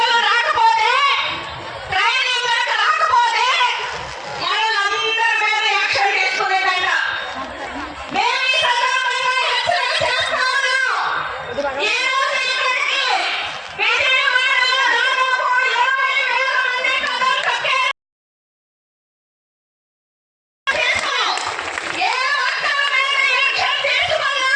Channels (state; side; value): identical; both; correlation 1.00